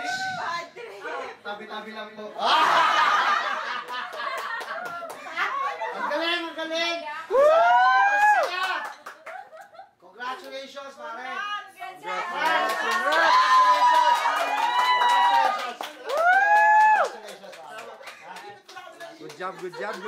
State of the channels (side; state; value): both; identical; correlation 1.00